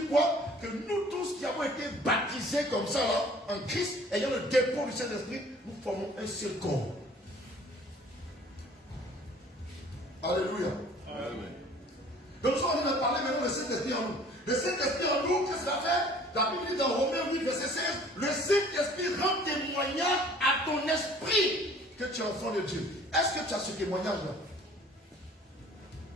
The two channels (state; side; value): normal; both; correlation 0.52